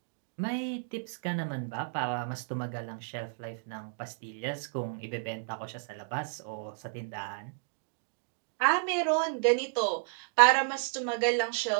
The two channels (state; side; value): silent; left; digital silence